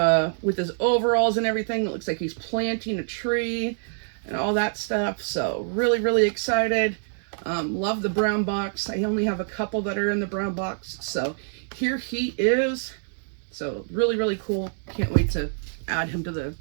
with his overalls and everything. It looks like he's planting a tree and all that stuff. So really, really excited. Love the brown box. I only have a couple that are in the brown box. So here he is. So really, really cool. Can't wait to add him to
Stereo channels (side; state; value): left; silent; digital silence